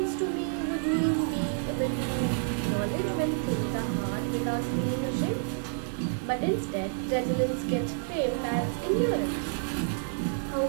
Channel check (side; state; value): left; silent; digital silence